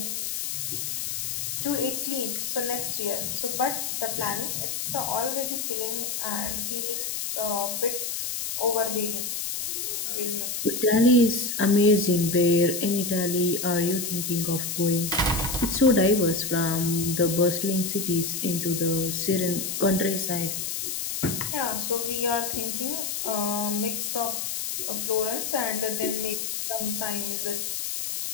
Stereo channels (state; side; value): noise; left; hiss, 3 dB below the sound